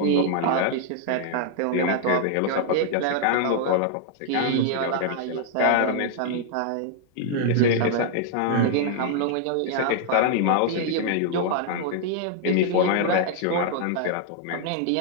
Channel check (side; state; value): both; different; correlation 0.00